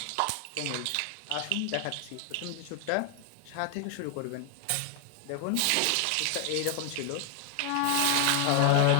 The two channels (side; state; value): both; different; correlation 0.00